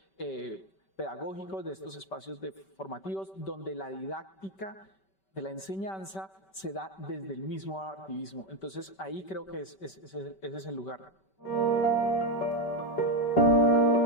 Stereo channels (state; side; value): late; right; 5.2 ms